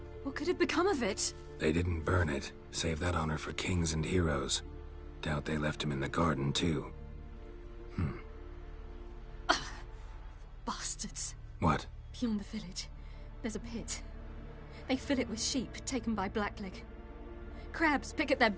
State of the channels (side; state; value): both; identical; correlation 1.00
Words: What could have become of it? They didn't burn it. Save that honor for kings and heroes. Doubt they left him in the garden, too. Bastards. What? Beyond the village, there's a pit. They fill it with sheep taken by Blackleg. Crabs pick at their